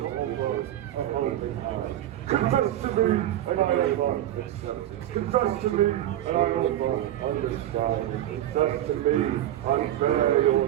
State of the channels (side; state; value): left; quieter; 12.7 dB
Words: offer a helping hand. Confess to me, and I offer acceptance. Confess to me, and I offer understanding. Confess to me, and bare